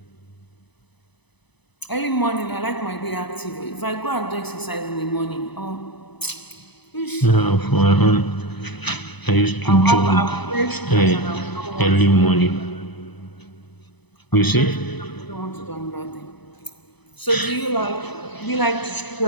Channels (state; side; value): late; right; 0.99 ms